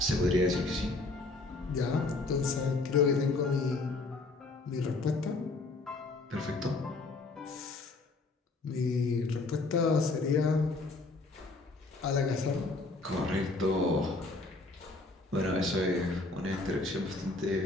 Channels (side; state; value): right; quieter; 3.4 dB